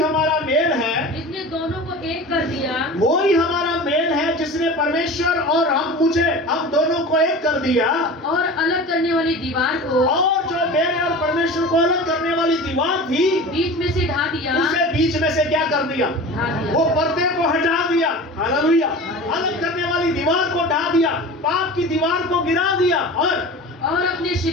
मेल है जिसने दोनों को एक कर दिया। वही हमारा मेल है जिसने परमेश्वर और हम दोनों को एक कर दिया। और अलग करने वाली दीवार को, और जो मेरे और परमेश्वर को अलग करने वाली दीवार थी बीच में से ढा दिया। उसे बीच में से क्या कर दिया, ढा दिया। वो पर्दे को हटा दिया। हालेलुया। अलग करने वाली दीवार को ढा दिया, पाप की दीवार को गिरा दिया, और अपने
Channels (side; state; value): both; normal; correlation 0.35